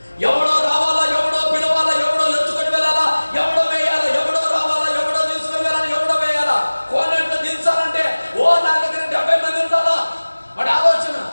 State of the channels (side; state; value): both; inverted; correlation -1.00